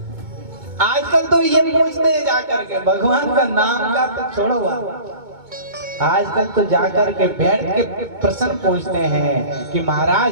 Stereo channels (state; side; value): late; left; 2.2 ms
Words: आजकल तो ये पूछते हैं जाकर के, भगवान का नाम का तो छोड़ो, आजकल तो जाकर के बैठ के प्रश्न पूछते हैं कि महाराज